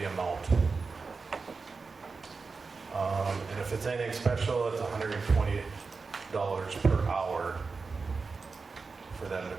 amount. And if it's anything special, it's $120 per hour for them to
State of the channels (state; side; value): quieter; left; 4.5 dB